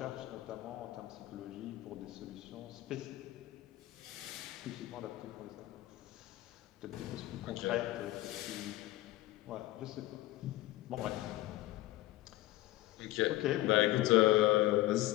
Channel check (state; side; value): quieter; right; 17.0 dB